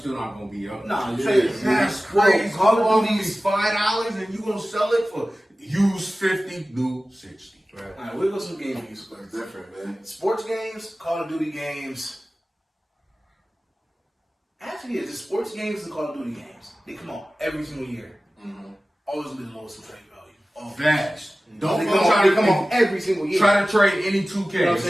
not gonna be up. Nah, your trade is That's crazy. Call of Duty's $5, and you gonna sell it for used 50, new 60. All right, we'll go some game news. It's different, man. Sports games, Call of Duty games. Actually, it's the sports games and Call of Duty games. They come out every single year. Always be the lowest in trade value. Facts. Don't They try come to out every single year. try to trade any 2K. You know what It's I'm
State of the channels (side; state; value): both; normal; correlation 0.97